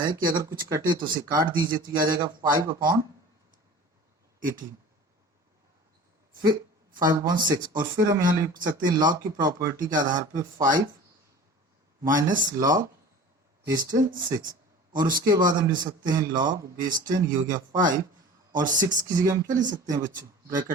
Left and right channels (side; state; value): both; normal; correlation 0.40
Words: कि अगर कुछ कटे तो उसे काट दीजिए, तो ये आ जाएगा 5 अपॉन 18, फिर 5 अपॉन 6 और फिर हम यहाँ लिख सकते हैं लॉग की प्रॉपर्टी के आधार पे 5 माइनस लॉग बेस 10 6 और उसके बाद हम लिख सकते हैं लॉग बेस 10, ये हो गया 5 और 6 की जगह हम क्या लिख सकते हैं बच्चों,